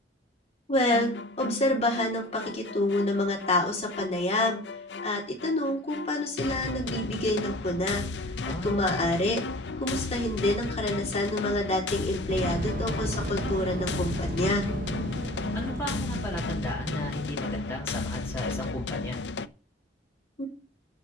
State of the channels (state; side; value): normal; both; correlation 0.43